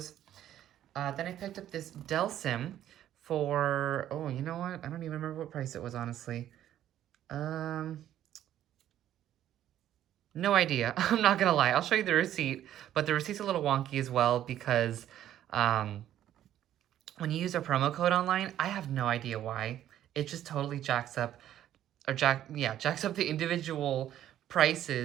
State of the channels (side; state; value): left; quieter; 11.7 dB